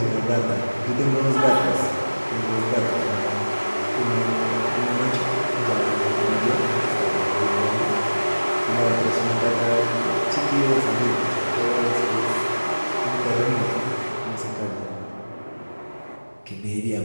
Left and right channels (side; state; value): both; inverted; correlation -1.00